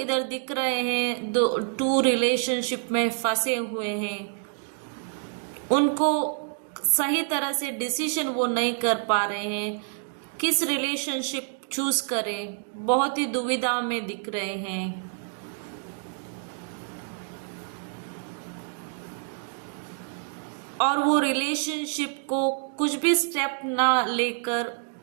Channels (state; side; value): silent; left; 60 dB below the other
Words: दिख रहे हैं टू रिलेशनशिप में फंसे हुए हैं, उनको सही तरह से डिसीजन वो नहीं कर पा रहे हैं, किस रिलेशनशिप चूज करें, बहुत ही दुविधा में दिख रहे हैं। और वो रिलेशनशिप को कुछ भी स्टेप ना लेकर